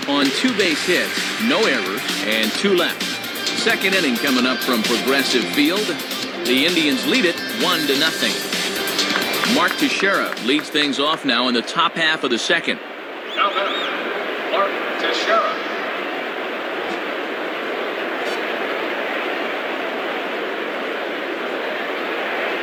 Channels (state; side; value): identical; both; correlation 1.00